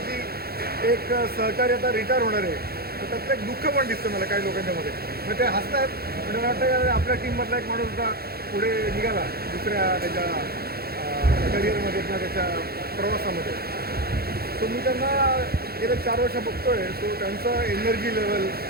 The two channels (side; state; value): left; late; 0.45 ms